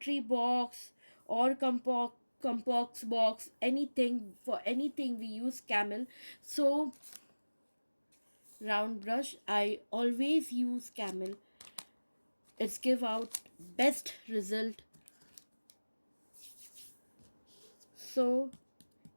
box or compox box, anything, for anything we use camel. So round brush I always use camel. It's give out best result. So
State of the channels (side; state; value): both; inverted; correlation -1.00